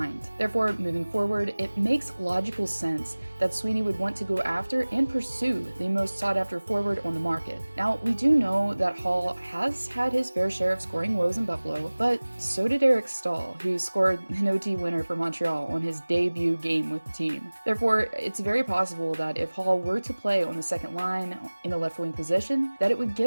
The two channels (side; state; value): both; inverted; correlation -1.00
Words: Therefore, moving forward, it makes logical sense that Sweeney would want to go after and pursue the most sought after forward on the market. Now, we do know that Hall has had his fair share of scoring woes in Buffalo, but so did Eric Stahl, who scored an OT winner for Montreal on his debut game with the team. Therefore, it's very possible that if Hall were to play on the second line in the left wing position, that it would